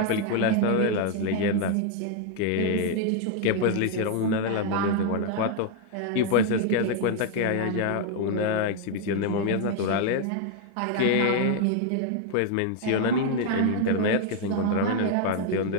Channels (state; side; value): different; both; correlation 0.01